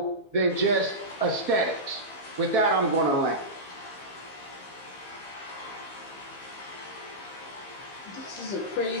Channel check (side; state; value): right; late; 15 ms